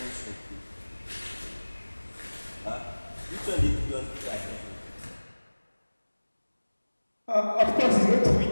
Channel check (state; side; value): inverted; both; correlation -1.00